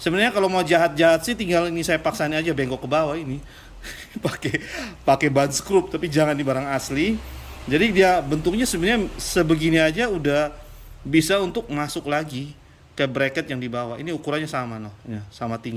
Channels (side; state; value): both; identical; correlation 1.00